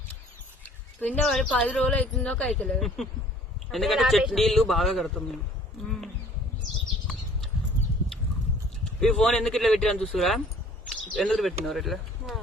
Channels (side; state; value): both; normal; correlation 0.53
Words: పిండ పడి 10 రోజులు అవుతుందో అవుతలేదు. ఎందుకంటే చెట్టు నీళ్లు బాగా కడతాం మేము. ఈ ఫోన్ ఎందుకు ఇట్లా పెట్టినా చూసురా? ఎందుకు పెట్టినవారు ఇట్లా?